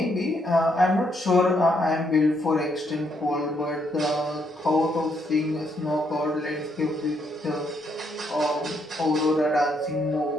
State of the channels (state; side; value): normal; both; correlation 0.74